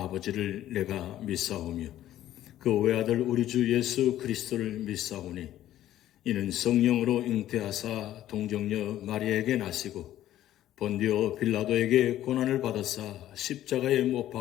내가 믿사오며 그 외아들 우리 주 예수 그리스도를 믿사오니 이는 성령으로 잉태하사 동정녀 마리아에게 나시고 본디오 빌라도에게 고난을 받으사 십자가에 못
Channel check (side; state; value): right; quieter; 13.0 dB